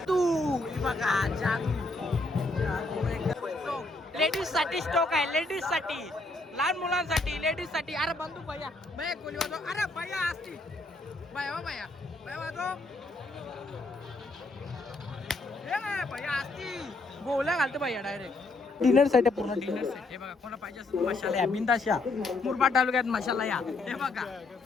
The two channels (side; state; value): right; quieter; 3.1 dB